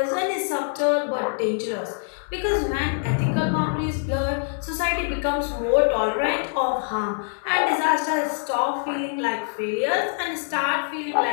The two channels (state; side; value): silent; right; digital silence